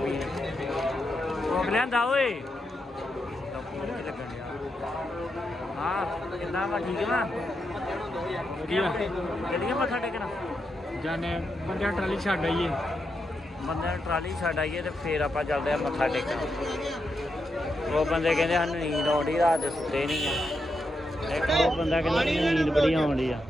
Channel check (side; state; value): both; normal; correlation 0.84